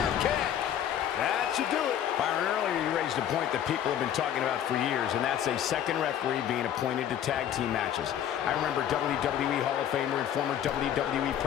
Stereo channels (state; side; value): quieter; right; 10.2 dB